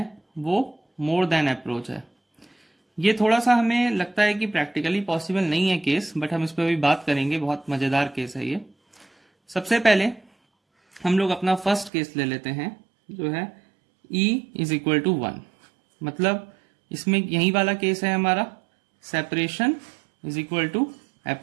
वो मोर देन अप्रोच है। ये थोड़ा सा हमें लगता है कि प्रैक्टिकली पॉसिबल नहीं है केस, बट हम इस पर अभी बात करेंगे, बहुत मजेदार केस है ये। सबसे पहले हम लोग अपना फर्स्ट केस ले लेते हैं, जो है E इज इक्वल टू 1, मतलब इसमें यही वाला केस है हमारा separation is equal to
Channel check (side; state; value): left; drops out; at 11.9 s